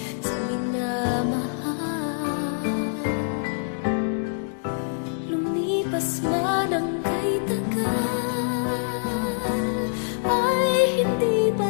sa minamahal. Lumipas man ang kay tagal, ay hindi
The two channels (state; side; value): silent; right; digital silence